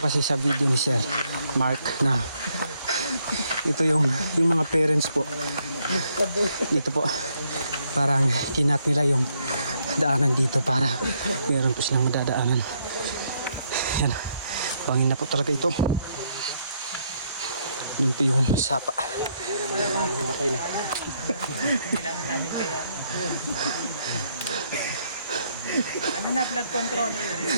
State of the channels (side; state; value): both; inverted; correlation -0.73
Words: kasi sa video ni Sir Mark na ito yung mga parents po. Dito po parang kinat nila yung daanan dito para meron po silang madadaanan. Yan. Bangin na po talaga ito. Doon po yung sapa. Matay na. Kailangan natin kaya. Ano na, flood control?